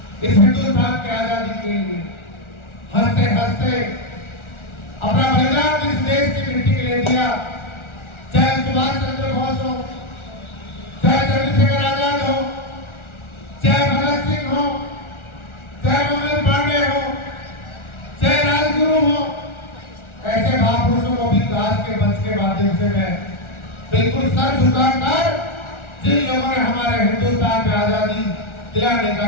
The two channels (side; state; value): right; late; 1.4 ms